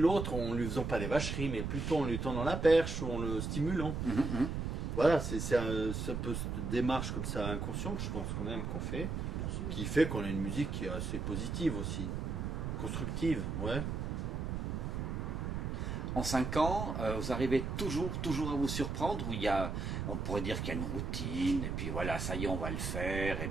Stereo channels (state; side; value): noise; right; rumble, 2 dB below the sound